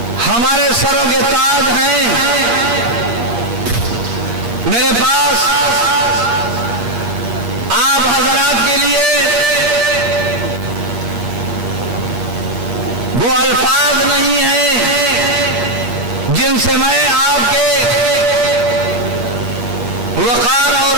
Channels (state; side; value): late; left; 8.5 ms